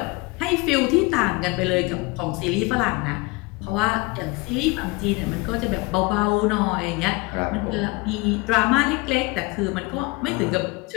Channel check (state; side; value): quieter; right; 24.9 dB